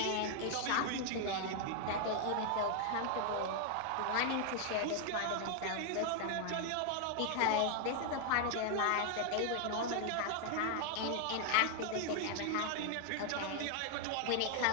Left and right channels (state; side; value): different; both; correlation 0.00